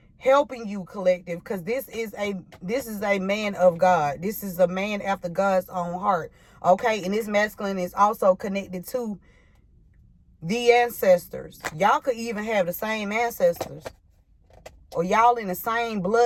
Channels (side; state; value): both; identical; correlation 1.00